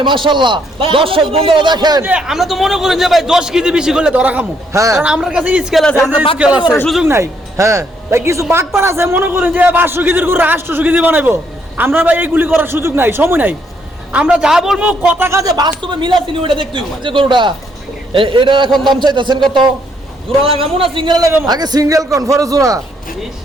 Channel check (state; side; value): normal; both; correlation 0.71